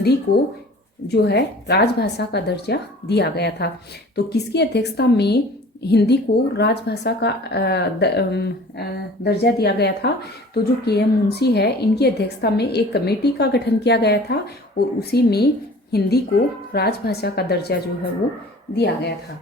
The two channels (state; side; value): normal; both; correlation 0.45